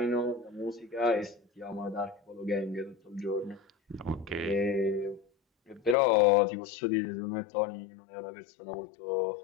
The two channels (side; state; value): right; drops out; at 6.0 s